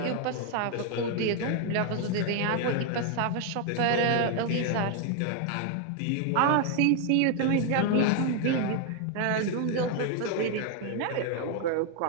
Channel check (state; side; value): different; both; correlation 0.01